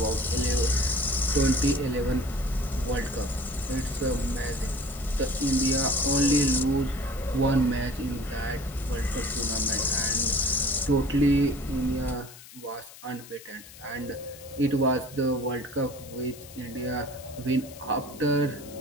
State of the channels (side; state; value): left; noise; hiss, 18 dB below the sound